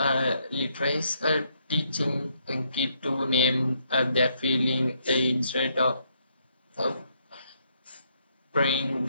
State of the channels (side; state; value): both; inverted; correlation -0.73